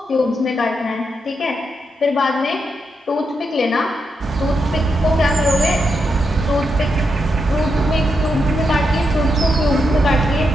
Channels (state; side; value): normal; both; correlation 0.83